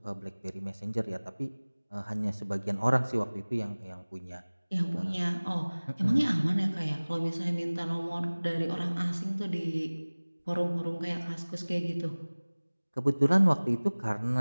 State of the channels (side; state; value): both; inverted; correlation -1.00